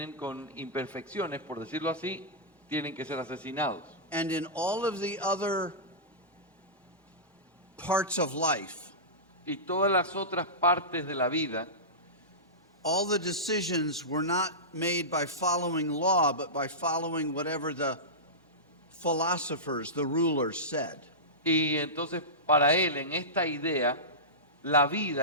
con imperfecciones, por decirlo así, tienen que ser asesinados. And in all of the other parts of life, Y todas las otras partes de la vida, all the decisions were not made by following law, but by following whatever the philosophers, the rulers said. y entonces para él en esta idea, la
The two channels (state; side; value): normal; both; correlation -0.17